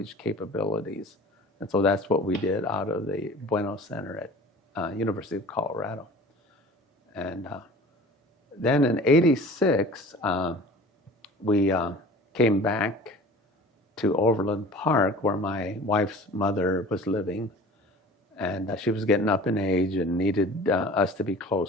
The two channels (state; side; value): normal; both; correlation 0.43